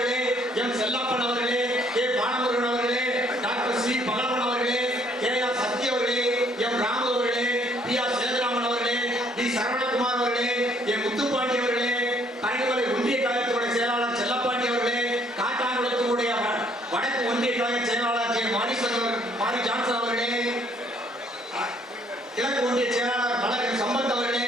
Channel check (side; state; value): both; normal; correlation 0.64